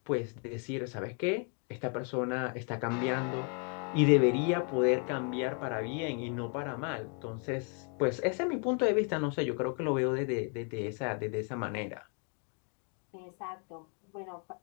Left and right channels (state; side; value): quieter; right; 38.7 dB